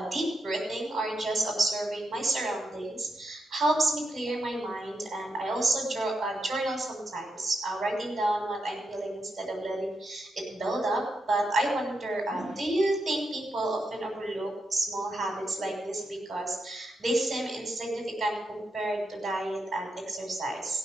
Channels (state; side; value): normal; both; correlation 0.83